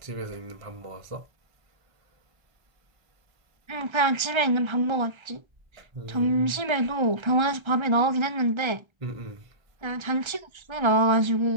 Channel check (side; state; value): left; late; 1.3 ms